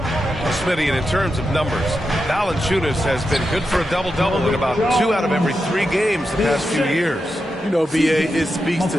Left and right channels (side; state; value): both; normal; correlation 0.88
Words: and in terms of numbers, Valanciunas has been good for a double-double in about 2 out of every 3 games the past few years. You know, B.A., it speaks